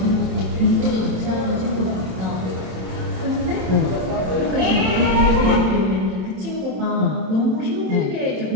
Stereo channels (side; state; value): left; late; 27 ms